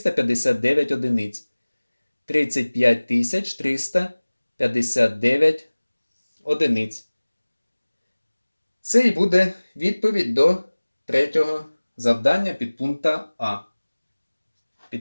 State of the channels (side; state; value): both; inverted; correlation -1.00